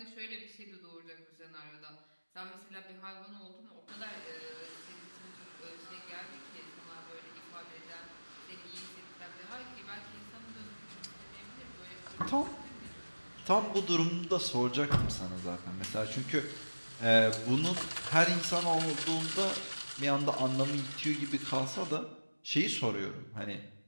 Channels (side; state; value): both; inverted; correlation -1.00